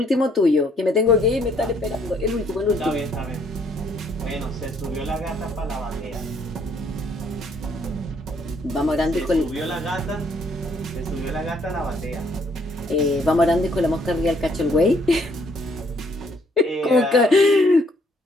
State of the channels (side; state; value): both; normal; correlation 0.66